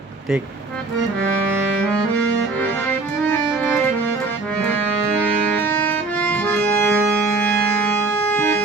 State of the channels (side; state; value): left; quieter; 3.6 dB